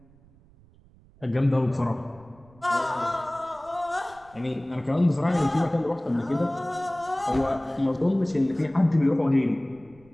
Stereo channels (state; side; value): noise; right; rumble, 27 dB below the sound